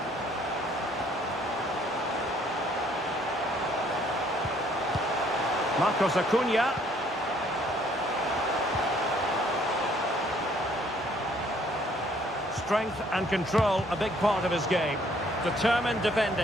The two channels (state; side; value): normal; both; correlation 0.62